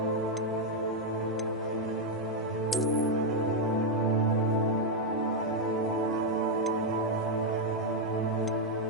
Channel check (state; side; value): normal; both; correlation 0.00